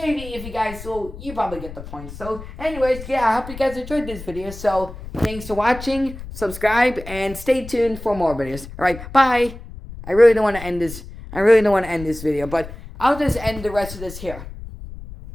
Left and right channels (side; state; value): left; noise; rumble, 13 dB below the sound